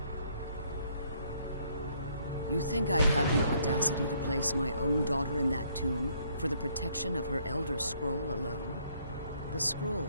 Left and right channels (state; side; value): inverted; both; correlation -0.67